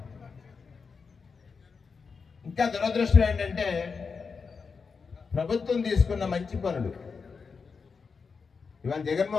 ఇంకా దురదృష్టం ఏంటంటే ప్రభుత్వం తీసుకున్న మంచి పనులు ఇవాళ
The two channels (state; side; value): quieter; right; 5.2 dB